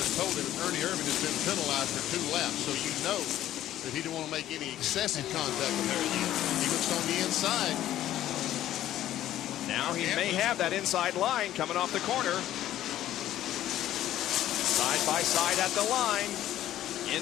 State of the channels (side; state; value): right; quieter; 12.9 dB